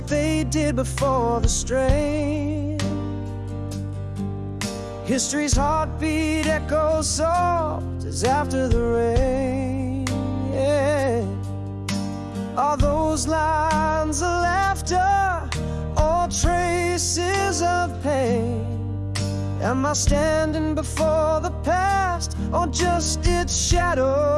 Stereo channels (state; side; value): identical; both; correlation 1.00